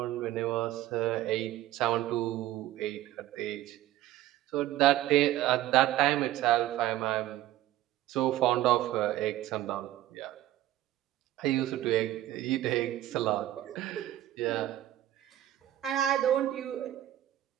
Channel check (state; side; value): quieter; left; 14.0 dB